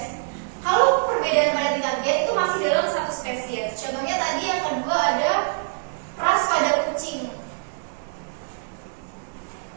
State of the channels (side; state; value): left; silent; digital silence